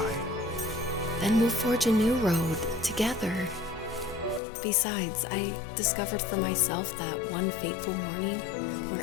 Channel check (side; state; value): right; drops out; at 4.4 s